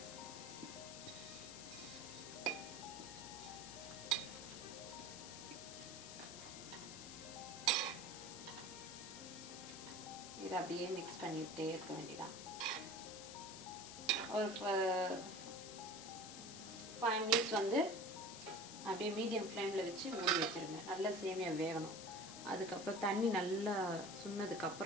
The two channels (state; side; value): noise; left; hiss, 11 dB below the sound